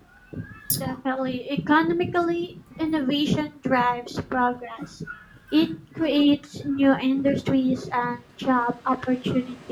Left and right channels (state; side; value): identical; both; correlation 1.00